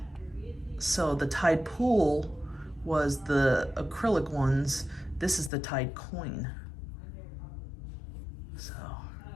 So the tide pool was the acrylic ones. This is the tide coin. So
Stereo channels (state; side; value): drops out; right; at 5.5 s